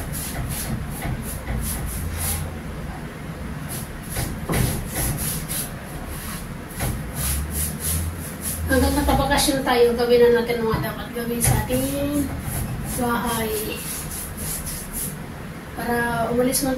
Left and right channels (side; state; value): both; identical; correlation 1.00